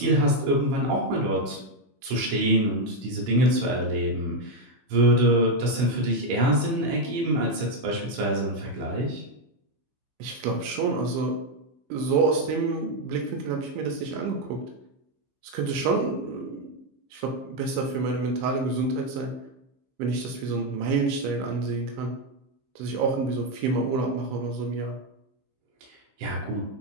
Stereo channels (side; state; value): left; late; 15 ms